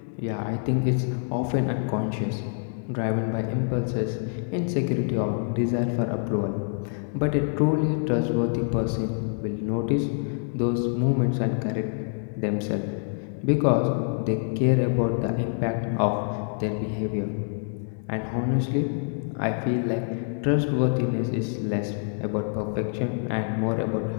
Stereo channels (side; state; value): right; silent; 56 dB below the other